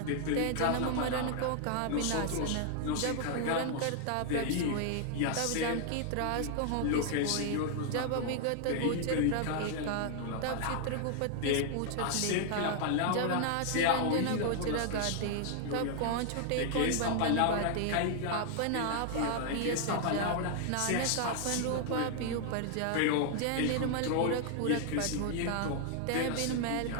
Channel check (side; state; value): both; different; correlation 0.00